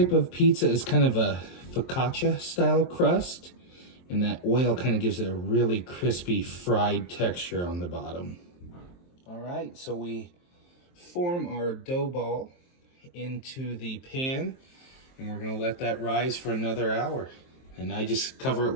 of pizza is kind of a focaccia style crust, and that oil kind of gives it a really crispy fried texture on the bottom. All right, so we form our dough ball into the pan, and we're gonna let that rise for another hour. And I just cover it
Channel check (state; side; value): late; right; 23 ms